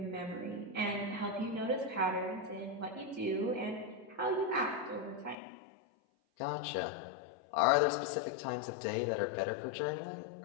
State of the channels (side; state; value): right; drops out; at 5.4 s